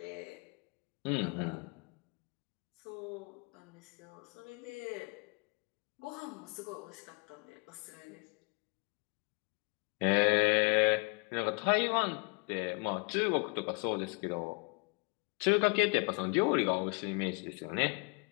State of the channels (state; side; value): quieter; right; 33.7 dB